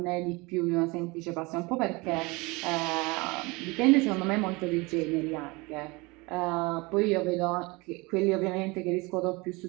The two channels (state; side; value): quieter; left; 25.2 dB